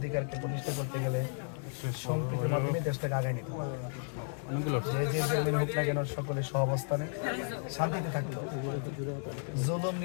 প্রতিষ্ঠা করতে গেলে সম্প্রীতির মাধ্যমে দেশটাকে আগায় নিতে হবে যে যে জেলমেন হোক না কেন সকলে সহাবস্থানে শান্তিতে থাকতো জুলুম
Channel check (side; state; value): right; silent; 55 dB below the other